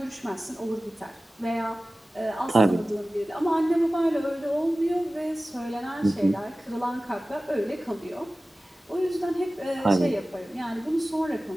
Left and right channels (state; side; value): normal; both; correlation 0.96